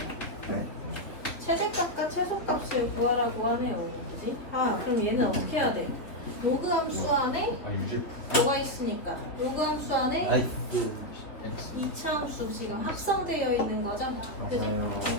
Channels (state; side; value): late; right; 3.7 ms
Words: 네? 최대값과 최소값을 구하라고 하네요. 그지? 아, 그럼 얘는 어떻게 해야 돼? 로그 함수 안에 아 유지. 뭐가 있으니까? 로그 함수 안에 나이스. 2차 함수 지금 합성되어 있는 거죠? 그지? 맞아요.